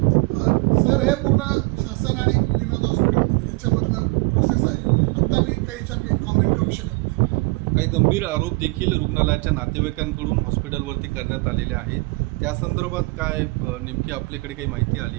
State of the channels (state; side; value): quieter; left; 26.7 dB